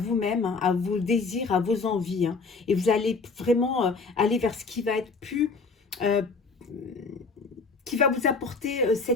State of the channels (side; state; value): right; quieter; 4.3 dB